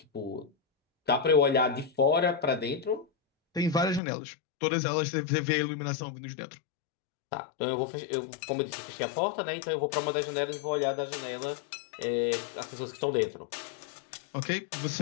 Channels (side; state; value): right; drops out; at 4.0 s